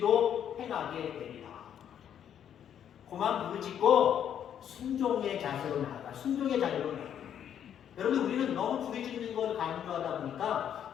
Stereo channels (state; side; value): quieter; right; 9.4 dB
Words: 행하게 되리라. 그만 부르짖고 순종의 자세로 나아가. 순종의 자세로 나아가. 여러분 우리는 너무 부르짖는 걸 강조하다